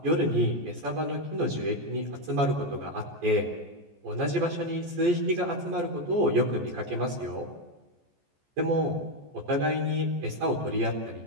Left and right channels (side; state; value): left; late; 14 ms